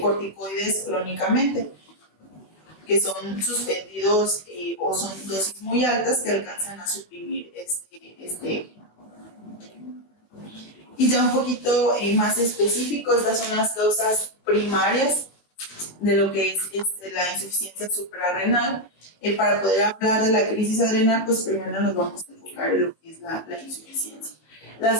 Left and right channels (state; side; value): late; right; 19 ms